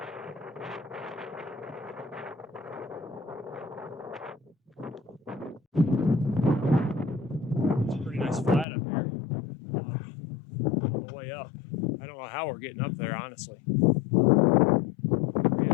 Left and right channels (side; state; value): right; drops out; at 8.7 s